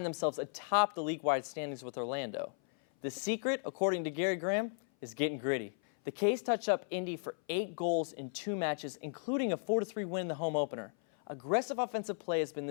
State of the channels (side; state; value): right; silent; 54 dB below the other